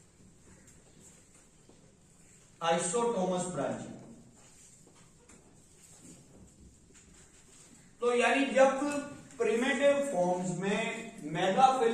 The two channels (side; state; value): both; identical; correlation 1.00